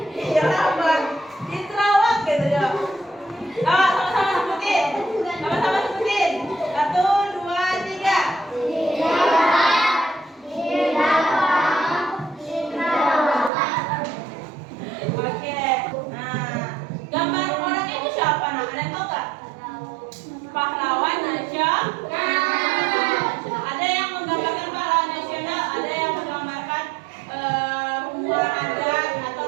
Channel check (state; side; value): drops out; left; at 13.5 s